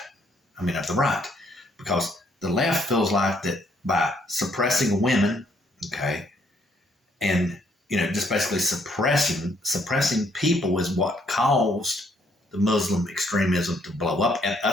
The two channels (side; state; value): both; normal; correlation 0.68